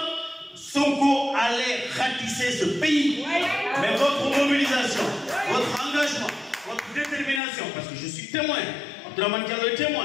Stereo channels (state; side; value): drops out; right; at 7.4 s